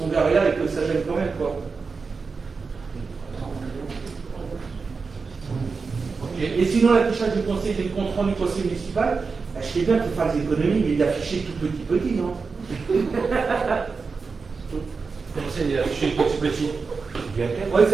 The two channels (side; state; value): left; quieter; 4.7 dB